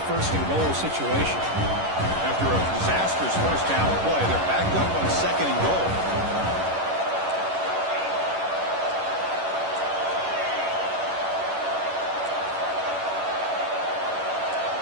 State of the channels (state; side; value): late; left; 11 ms